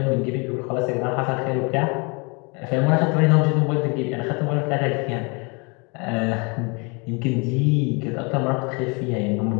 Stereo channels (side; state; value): right; quieter; 31.4 dB